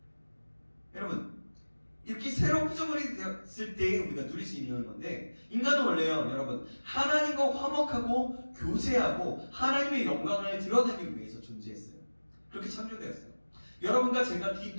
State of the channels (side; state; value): both; inverted; correlation -1.00